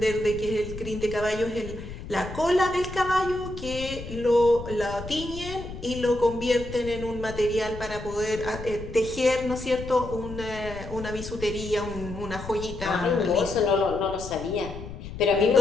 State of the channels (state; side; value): noise; left; rumble, 11 dB below the sound